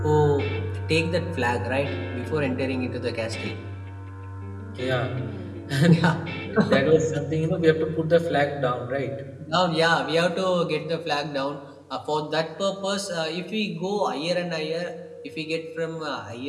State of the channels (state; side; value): identical; both; correlation 1.00